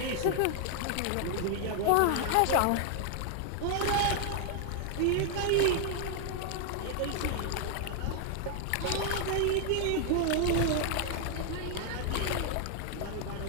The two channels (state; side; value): different; both; correlation 0.00